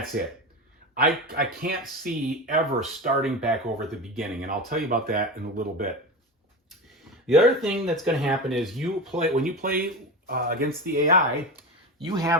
it. I can't see ever starting back over at the beginning, and I'll tell you about that in a little bit. The other thing that's going to happen is when you play against the AI, you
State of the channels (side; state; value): both; normal; correlation 0.24